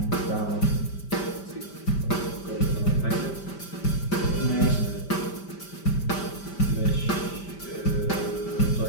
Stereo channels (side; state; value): right; late; 5.1 ms